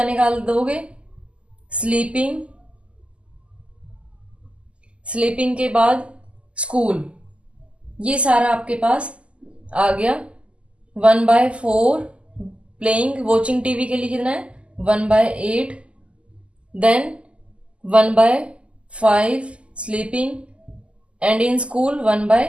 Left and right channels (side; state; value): left; late; 0.055 ms